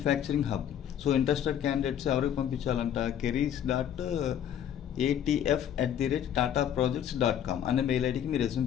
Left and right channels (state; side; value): quieter; right; 9.7 dB